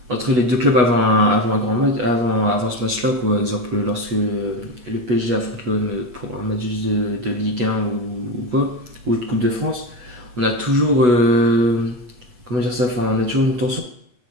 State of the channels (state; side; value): late; left; 8.2 ms